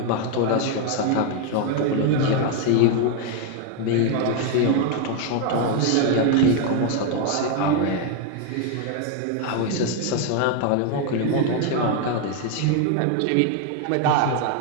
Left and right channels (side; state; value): both; different; correlation 0.01